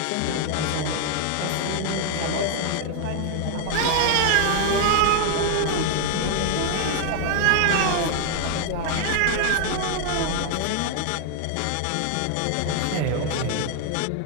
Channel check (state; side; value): different; both; correlation 0.00